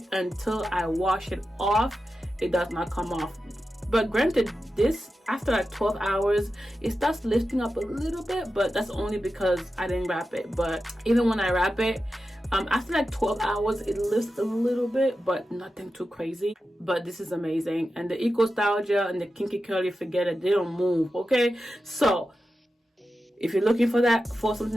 until I wash it off, it does not come off. But granted, this after like 12 hours it starts lifting up a little bit, but that's only because I didn't wrap it. But even when I wrap it, after like 12 hours it lifts a little bit, but nothing too crazy. But this is amazing. And the Eco Style Gel and the Kinky-Curly, forget it, they don't move. Okay, so if you're looking for that, for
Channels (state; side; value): normal; both; correlation 0.91